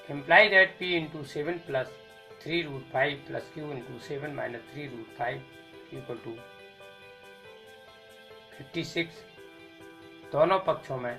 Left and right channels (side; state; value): both; identical; correlation 1.00